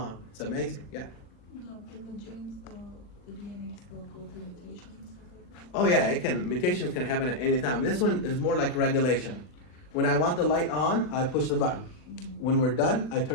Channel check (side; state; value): right; late; 40 ms